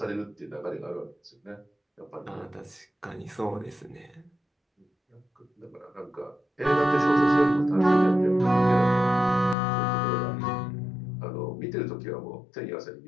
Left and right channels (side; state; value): right; drops out; at 9.6 s